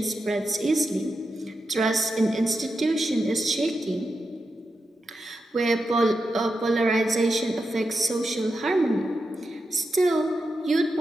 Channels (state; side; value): normal; both; correlation 0.88